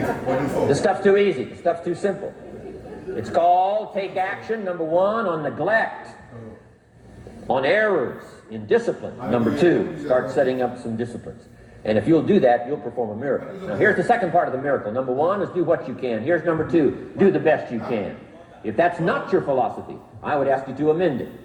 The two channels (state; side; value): identical; both; correlation 1.00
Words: This stuff's too easy. This stuff's too simple. It's called take action, number one, on neglect, on errors in discipline. Number two, start setting up some disciplines. And if you'll do that, you'll perform a miracle. Now, here's the second part of the miracle. Number one is do what you can. Here's number two, do the best you can. If that's not your philosophy, I would ask you to amend it.